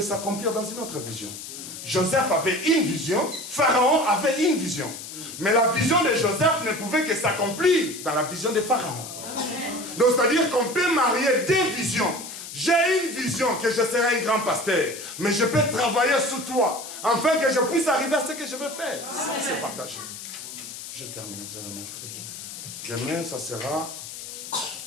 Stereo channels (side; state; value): left; noise; hiss, 11 dB below the sound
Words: s'accomplir dans une autre vision. Joseph avait une vision, Pharaon avait une vision. Mais la vision de Joseph ne pouvait que s'accomplir dans la vision de Pharaon. Donc, c'est-à-dire qu'on peut marier deux visions. J'ai une vision que je serai un grand pasteur, mais je peux travailler sous toi, afin que je puisse arriver à ce que je veux faire. Ça, c'est partagé. Je termine, vous allez mettre. Demain, ça sera